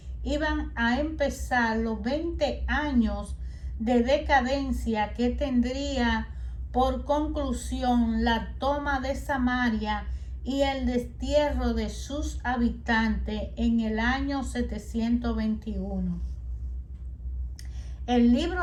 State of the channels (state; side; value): identical; both; correlation 1.00